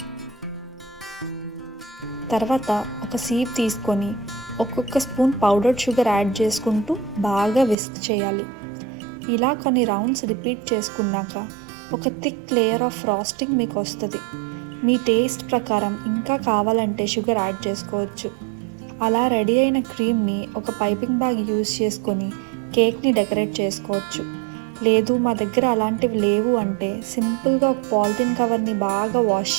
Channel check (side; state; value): left; drops out; at 7.8 s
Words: తర్వాత ఒక సీప్ తీసుకొని ఒక్కొక్క స్పూన్ పౌడర్డ్ షుగర్ యాడ్ చేసుకుంటూ బాగా విస్క్ చేయాలి. ఇలా కొన్ని రౌండ్స్ రిపీట్ చేసుకున్నాక ఒక థిక్ లేయర్ ఆఫ్ ఫ్రాస్టింగ్ మీకు వస్తుంది. మీ టేస్ట్ ప్రకారం ఇంకా కావాలంటే షుగర్ యాడ్ చేసుకోవచ్చు. అలా రెడీ అయిన క్రీమ్ని ఒక పైపింగ్ బ్యాగ్ యూజ్ చేసుకొని కేక్ని డెకరేట్ చేసుకోవచ్చు. లేదు మా దగ్గర అలాంటివి లేవు అంటే సింపుల్గా ఒక పాలిథిన్ కవర్ని బాగా వాష్